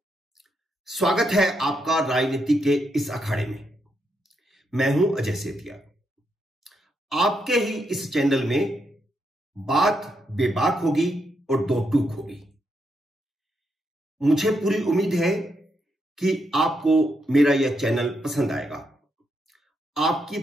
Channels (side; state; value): both; normal; correlation 0.80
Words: स्वागत है आपका राजनीति के इस अखाड़े में। मैं हूं अजय सेतिया। आपके ही इस चैनल में बात बेबाक होगी और दो टूक होगी। मुझे पूरी उम्मीद है कि आपको मेरा यह चैनल पसंद आएगा। आपकी